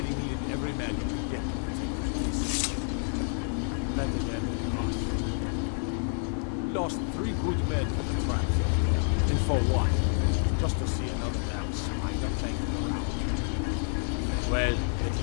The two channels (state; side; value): silent; right; 59 dB below the other